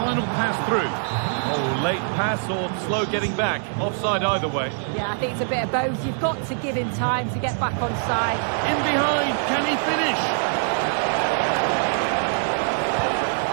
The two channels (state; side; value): silent; left; digital silence